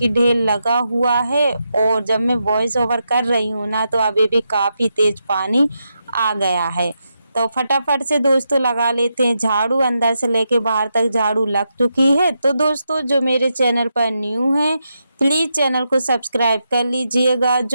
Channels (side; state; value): both; inverted; correlation -0.85